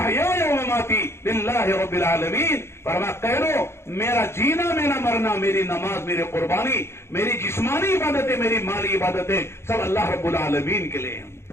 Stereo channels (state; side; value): late; right; 0.12 ms